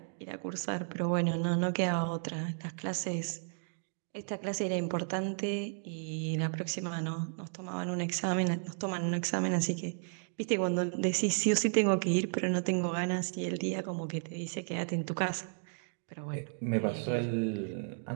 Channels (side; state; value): left; silent; digital silence